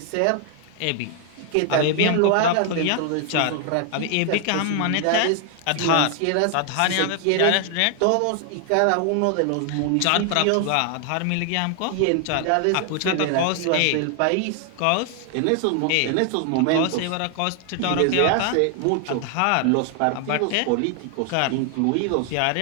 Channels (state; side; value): different; both; correlation 0.00